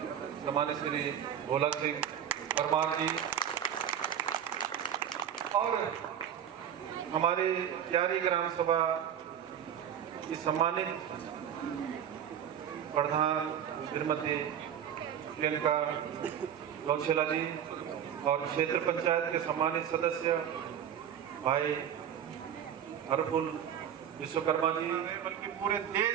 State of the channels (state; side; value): quieter; left; 9.3 dB